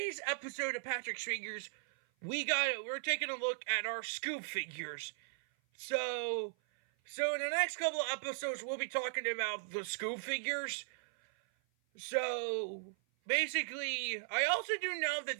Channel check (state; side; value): silent; left; 53 dB below the other